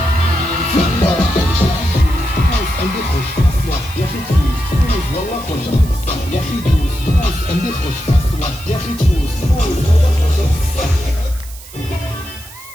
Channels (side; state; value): right; noise; hiss, 17 dB below the sound